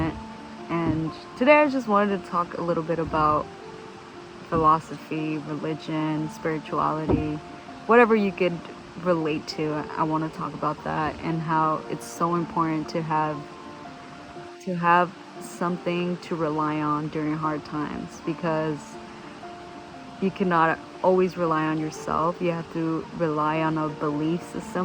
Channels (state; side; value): identical; both; correlation 1.00